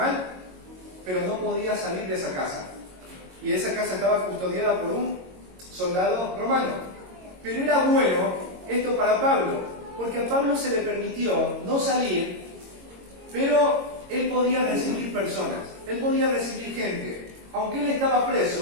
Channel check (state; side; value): late; left; 22 ms